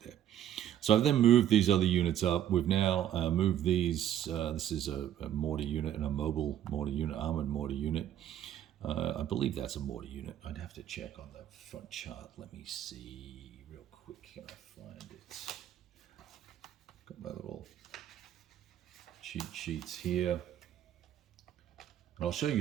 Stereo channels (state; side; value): quieter; left; 11.1 dB